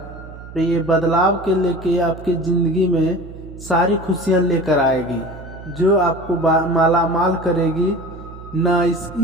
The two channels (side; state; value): right; noise; hum, 15 dB below the sound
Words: तो ये बदलाव के लेके आपकी ज़िंदगी में सारी खुशियाँ लेकर आएगी, जो आपको मालामाल करेगी। ना